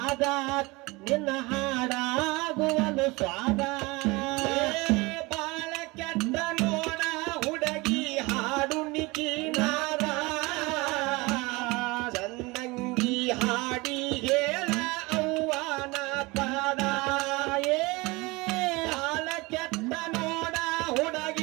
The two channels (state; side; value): quieter; left; 24.0 dB